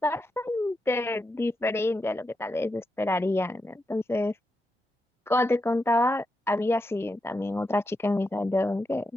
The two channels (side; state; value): both; normal; correlation 0.86